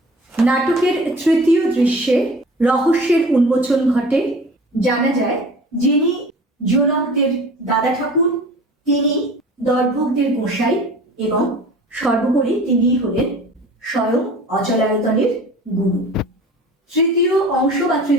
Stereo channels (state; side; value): normal; both; correlation 0.42